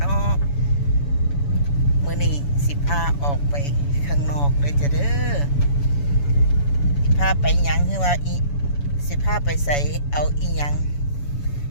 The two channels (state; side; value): late; right; 7.0 ms